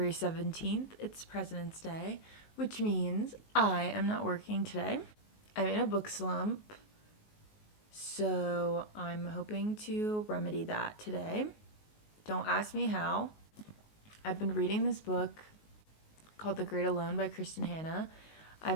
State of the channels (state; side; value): late; right; 19 ms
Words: 17th. It's President's Day, which means I am not working today. I'm in a book slump, so I'm hoping to remedy that today. Don't ask me how. I've been reading this book called The Great Alone by Kristin Hannah.